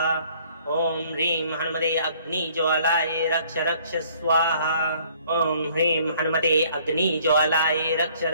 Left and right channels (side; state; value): both; inverted; correlation -0.59